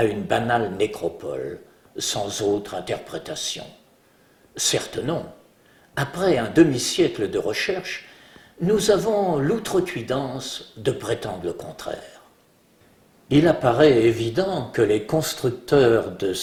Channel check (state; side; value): identical; both; correlation 1.00